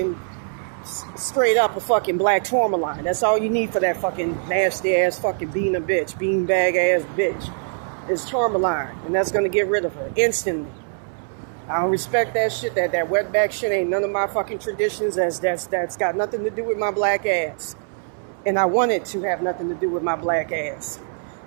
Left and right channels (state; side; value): silent; left; 64 dB below the other